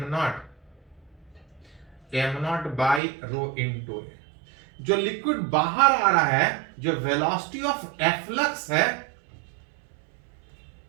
not by rho into A. जो लिक्विड बाहर आ रहा है, जो वेलोसिटी ऑफ एफ्लक्स है,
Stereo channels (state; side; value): drops out; left; at 3.0 s